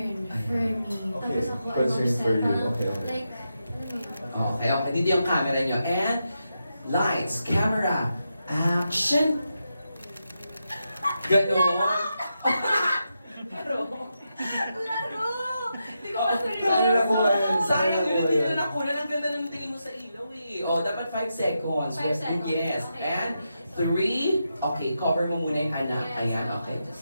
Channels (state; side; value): inverted; both; correlation -0.86